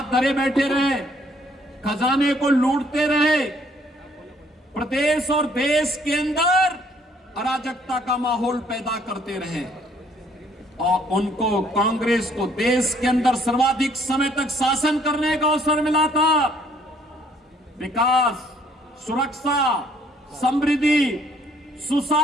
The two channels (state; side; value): normal; both; correlation 0.63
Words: धरे बैठे रहे, खजाने को लूटते रहे, प्रदेश और देश के अंदर अराजकता का माहौल पैदा करते रहे और उनको, कांग्रेस को देश के अंदर सर्वाधिक समय तक शासन करने का अवसर मिला था। विकास, सुरक्षा, समृद्धि,